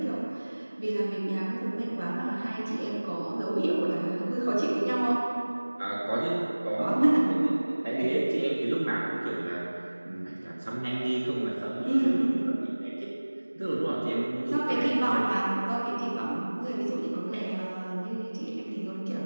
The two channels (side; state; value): both; inverted; correlation -1.00